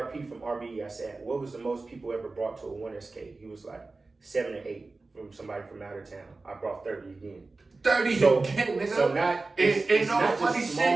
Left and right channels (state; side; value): quieter; left; 3.5 dB